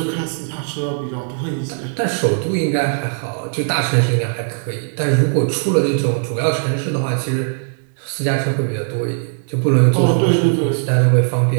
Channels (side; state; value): left; silent; digital silence